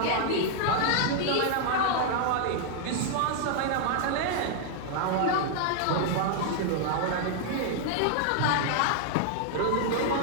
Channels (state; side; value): different; both; correlation 0.00